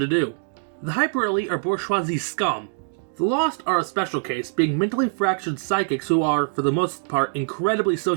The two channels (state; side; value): silent; left; digital silence